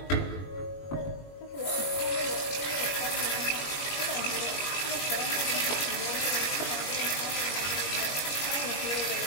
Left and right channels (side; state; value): right; late; 21 ms